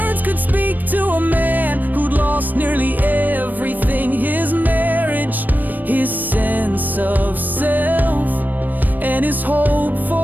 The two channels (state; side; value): late; left; 0.087 ms